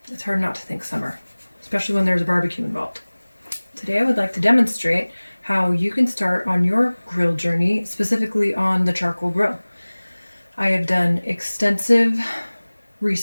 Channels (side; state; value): both; inverted; correlation -1.00